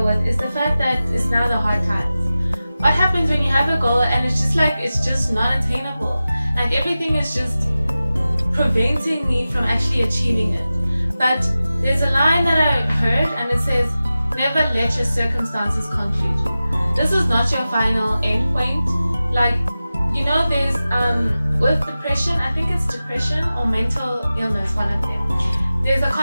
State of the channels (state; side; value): inverted; both; correlation -0.95